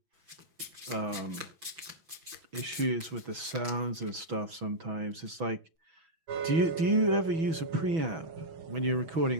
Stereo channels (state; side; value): late; left; 5.8 ms